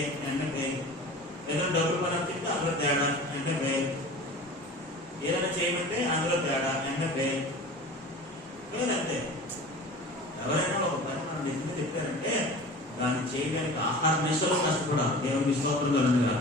అంటే పేరు, ఏదైనా డబ్బులు పని అప్పితే అందులో తేడా అంటే పేరు, ఏదైనా చేయమంటే అందులో తేడా అంటే పేరు అంతే. ఎవరైనా ఒక పని మనం నిజంగా చెప్పారంటే దాన్ని చేయడానికి ఆహార నిశలో కష్టపడాలి. దేవుని స్తోత్రం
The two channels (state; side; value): normal; both; correlation 0.38